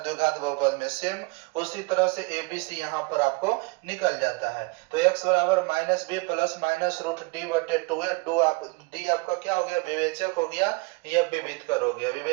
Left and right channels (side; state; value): left; quieter; 27.7 dB